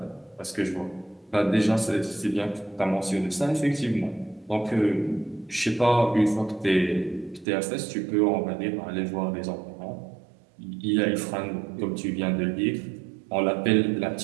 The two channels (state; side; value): drops out; left; at 7.5 s